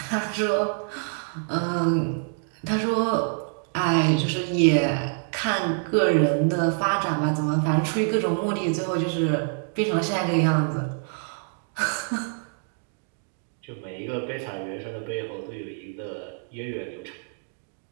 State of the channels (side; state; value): left; silent; 56 dB below the other